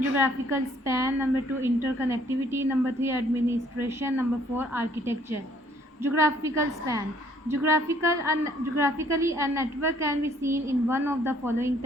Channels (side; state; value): both; normal; correlation 0.62